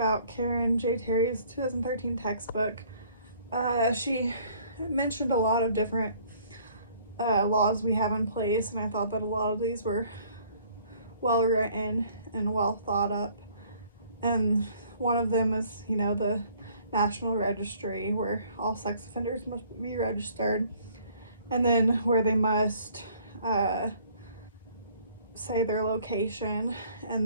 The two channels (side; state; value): both; inverted; correlation -0.58